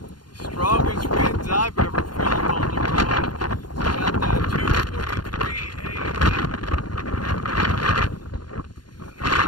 The strongest winds I've ever felt on the road. It's about that 2:43 a.m. I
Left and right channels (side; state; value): right; late; 0.71 ms